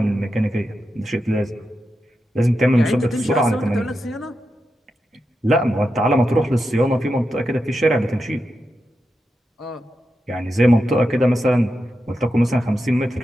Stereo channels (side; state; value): both; normal; correlation 0.88